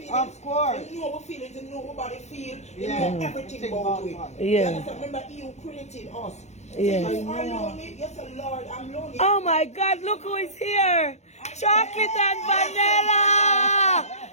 Of course. You know our feelings, you know what body feel, you Yeah. know everything Think about about it. it. Yeah. You understand? Remember, He who created us. Yeah. So you are lonely, yes, Lord, I'm lonely. Oh my God, look who is here. Chocolate and vanilla.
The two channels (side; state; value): right; late; 0.33 ms